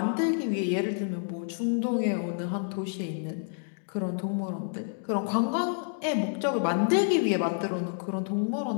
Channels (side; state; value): right; silent; digital silence